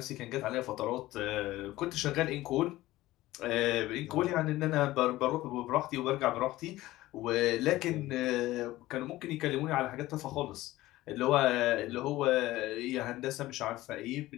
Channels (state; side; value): quieter; right; 17.0 dB